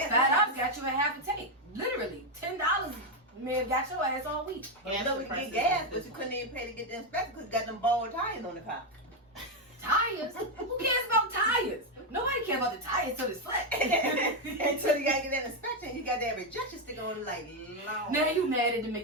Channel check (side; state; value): both; normal; correlation 0.04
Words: $5 got you a half a tank. Literally, $10 may have got your ass all week. Gas No, we prices get gas, is but you different. couldn't even pay to get the inspection because you got them bald tires on the car. Tires? Who cares about tires? Nobody cares about the tires till it's flat. Until you gotta get that inspection, you got that rejection sticker on it like, Lord. Now you mad at the